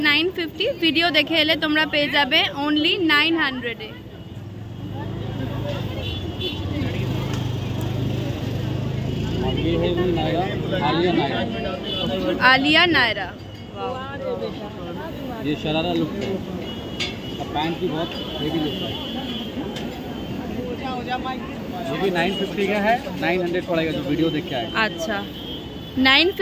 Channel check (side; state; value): both; identical; correlation 1.00